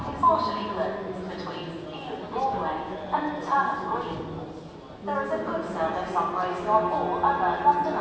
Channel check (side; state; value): both; identical; correlation 1.00